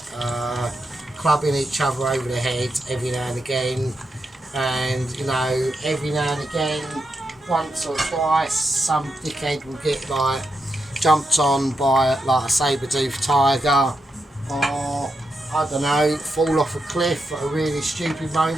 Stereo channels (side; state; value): both; normal; correlation 0.85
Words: clubbing each other over the head every now and again, and you know, every now and again, once or twice, some dickhead will get like jumped on by like a saber-toothed tiger, or I don't know, fall off a cliff at a really stupid